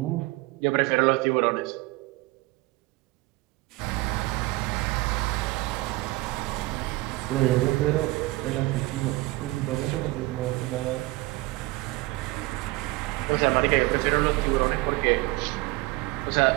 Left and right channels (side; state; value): left; quieter; 21.1 dB